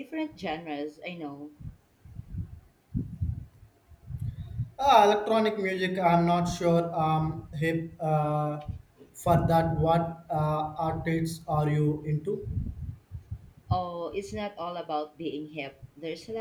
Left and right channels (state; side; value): identical; both; correlation 1.00